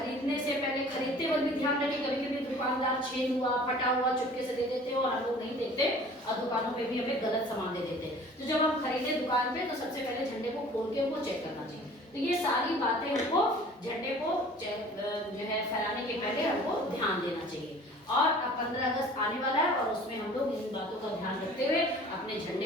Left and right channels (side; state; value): both; normal; correlation 0.47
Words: से पहले, खरीदते वक्त भी ध्यान रखें, कभी कभी दुकानदार छेद हुआ, फटा हुआ चुपके से दे देते हैं और हम लोग नहीं देखते और दुकानों पे भी हमें गलत सामान दे देते हैं। तो जब हम खरीदे दुकान पे तो सबसे पहले झंडे को खोल के उनको चेक करना चाहिए। तो ये सारी बातें हमको झंडे को जो है फहराने के पहले हमको ध्यान देना चाहिए। और अब 15 अगस्त आने वाला है और उसमें हम लोग इन बातों का ध्यान रखते हुए अपने